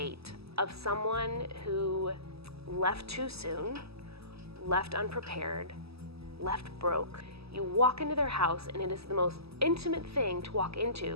of someone who left too soon, left unprepared, left broke, you walk into their house and it is the most intimate thing to walk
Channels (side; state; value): left; late; 0.78 ms